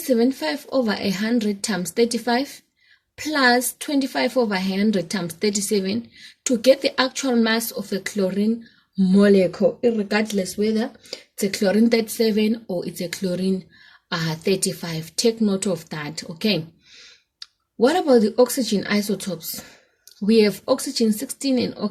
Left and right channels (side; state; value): both; identical; correlation 1.00